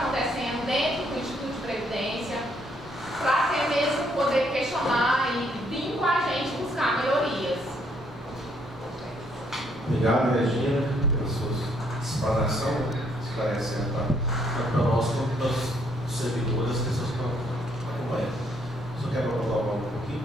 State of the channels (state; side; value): normal; both; correlation 0.69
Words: dentro do Instituto de Previdência, para até mesmo poder questionar e vir com a gente buscar melhorias. Obrigado, Regina, pela sua explanação, esclarecendo para nós, quanto para os servidores, as pessoas que estão acompanhando. Só quero colocar um pouquinho,